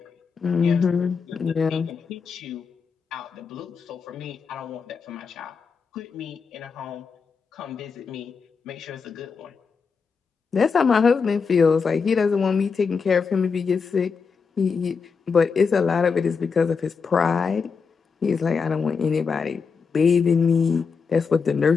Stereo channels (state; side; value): quieter; right; 5.5 dB